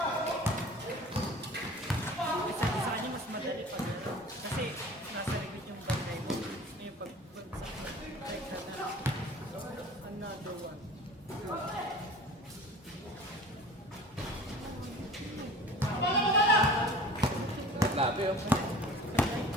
sa kanya mas madali pag kasi nasa likod yung bantay mo. Yung pagbagsak na break na another one. Grabe oh.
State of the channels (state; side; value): normal; both; correlation 0.41